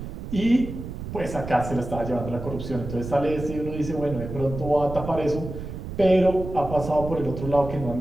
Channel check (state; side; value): noise; right; rumble, 8 dB below the sound